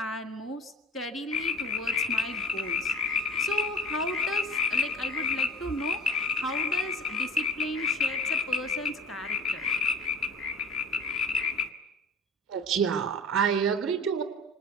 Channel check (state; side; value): normal; both; correlation 0.38